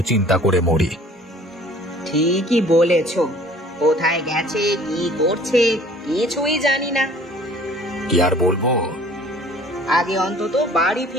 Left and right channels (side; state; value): both; normal; correlation 0.52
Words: চিন্তা করে মরি। ঠিকই বলেছ, কোথায় গেছে কি করছে কিছুই জানি না। কি আর বলবো, আগে অন্তত বাড়ি